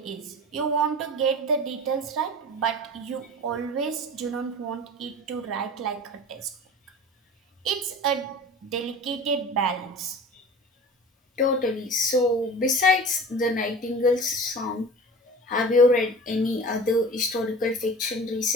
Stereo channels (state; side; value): normal; both; correlation 0.37